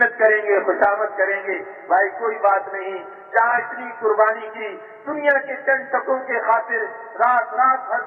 کریں گے، خوشامد کریں گے، بھائی کوئی بات نہیں، جہاں اتنی قربانی کی، دنیا کے چند ٹکوں کے خاطر رات بھر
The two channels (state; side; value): identical; both; correlation 1.00